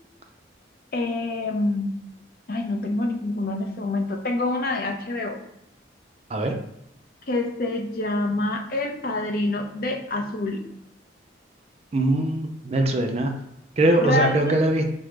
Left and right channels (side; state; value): both; normal; correlation 0.53